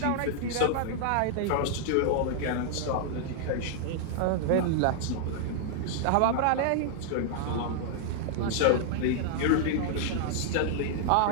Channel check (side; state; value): both; different; correlation -0.01